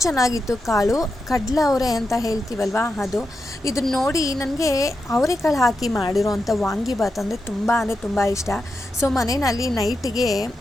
ಚೆನ್ನಾಗಿತ್ತು. ಕಾಳು ಕಡಲೆ ಅವರೆ ಅಂತ ಹೇಳ್ತೀವಲ್ವ, ಅದು. ಇದನ್ನ ನೋಡಿ ನನಗೆ ಅವರೆಕಾಳು ಹಾಕಿ ಮಾಡಿರೋವಂಥ ವಾಂಗಿಬಾತ್ ಅಂದರೆ ತುಂಬ ಇಷ್ಟ. ಸೊ ಮನೆಯಲ್ಲಿ ನೈಟಿಗೆ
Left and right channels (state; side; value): normal; both; correlation 0.88